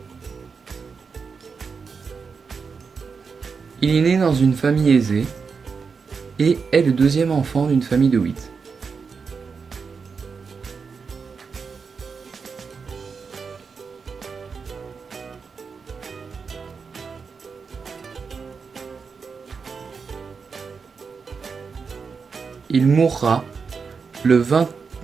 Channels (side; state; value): left; quieter; 5.4 dB